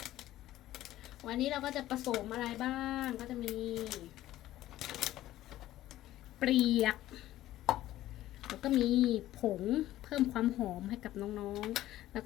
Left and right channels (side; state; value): right; quieter; 14.5 dB